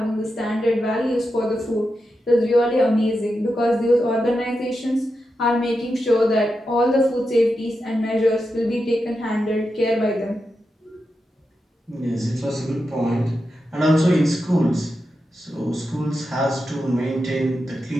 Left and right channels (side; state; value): both; normal; correlation 0.88